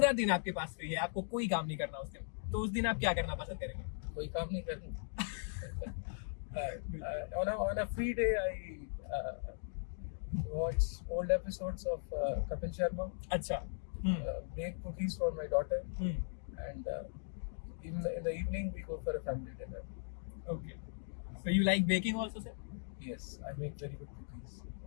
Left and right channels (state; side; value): silent; right; digital silence